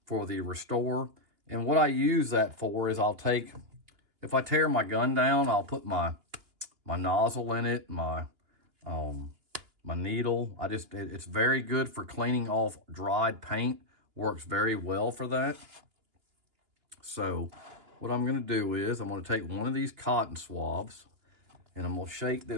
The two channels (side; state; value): left; late; 2.9 ms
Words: for the Restore. And what I use that for is if I tear my gun down, I'll put my nozzle in it, my needle. It's very good for cleaning off dried paint. Works very well for that. So what I'm going to do is I'm going to take one of these cotton swabs and I'm going to shake